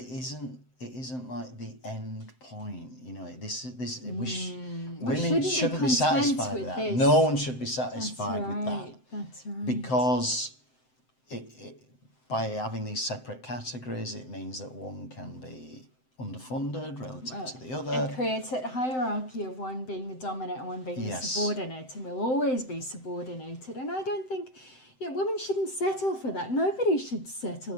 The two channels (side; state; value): right; late; 7.8 ms